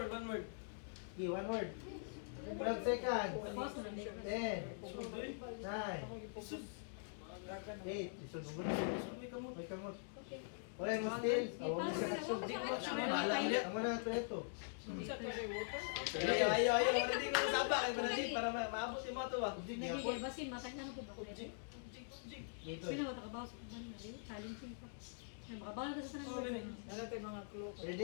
one word. Okay, 1 word. 12 seconds. Pause na lang. 10, 9, 8. Isunod. May kamot. Wala mo still. Wala sa action. Ang muna ito ito. Isa to sa water. Ayaw. Hindi ko nasaba. Kaya panadin para maabot yung mga to ba? Nagigil ba si matag na ko ba? Object. Dito. Sino matakabaw sa kuban na? Challenging pa. Ay, makabawal ka sa Oh, tanang. ganun. Wala tayong mga clue.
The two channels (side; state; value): right; silent; digital silence